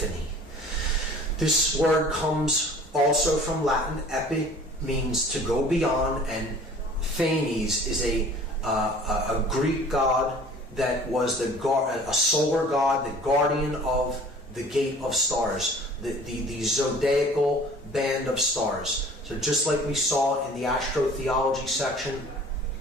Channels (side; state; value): both; normal; correlation 0.48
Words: This word comes also from Latin. Epi means to go beyond, and Phanes is a Greek god that was a solar god, the guardian of the gate of stars, the zodiacal band of stars. So just like we saw in the astrotheology section,